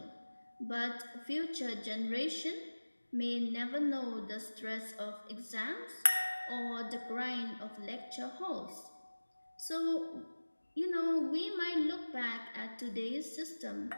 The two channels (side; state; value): both; inverted; correlation -1.00